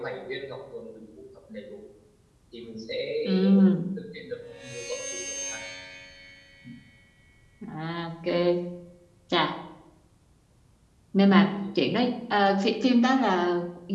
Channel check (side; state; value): both; identical; correlation 1.00